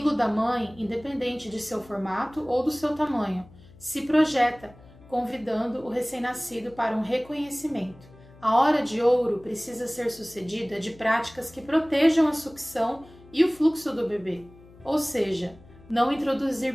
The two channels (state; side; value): noise; left; hum, 23 dB below the sound